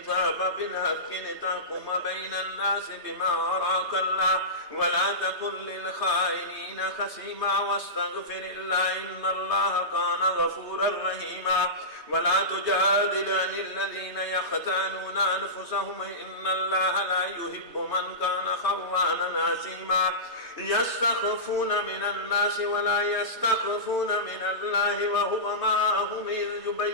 बिल-हक़्क़ि लितहकुम बैनन-नास बिमा अराकल्लाह वला तकुन लिल-ख़ाइनीना ख़सीमा वस्तग़फ़िरिल्लाह इन्नल्लाह कान गफ़ूरर रहीमा वला तुजादिल अनिल्लज़ीना यख़्तानूना अनफ़ुसहुम इन्नल्लाह ला युहिब्बु मन कान ख़व्वानन असीमा यस्तख़फ़ूना मिनन-नासि वला यस्तख़फ़ूना मिनल्लाहि वहुवा माअहुम इज़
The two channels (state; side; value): late; left; 3.2 ms